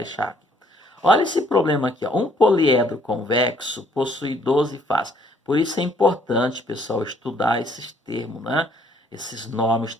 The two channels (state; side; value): normal; both; correlation 0.64